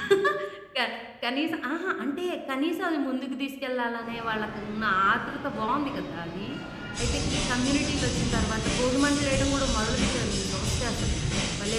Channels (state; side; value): identical; both; correlation 1.00